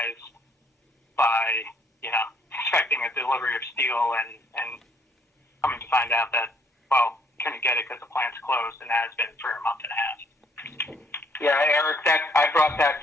by expecting a delivery of steel and coming to find out that, well, couldn't get it because the plant's closed, and has been for a month and a half. Yeah, Eric, I brought that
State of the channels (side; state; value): both; normal; correlation 0.65